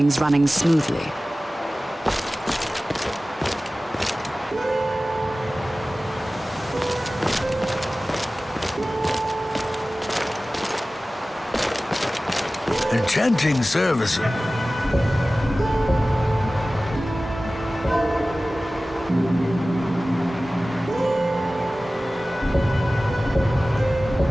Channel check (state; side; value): normal; both; correlation 0.97